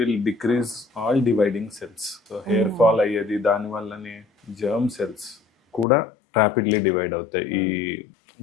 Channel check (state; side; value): drops out; right; at 5.9 s